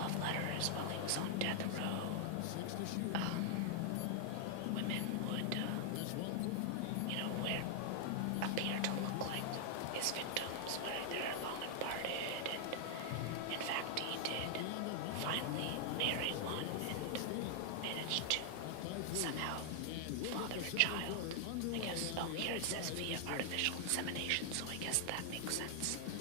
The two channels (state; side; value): different; both; correlation 0.00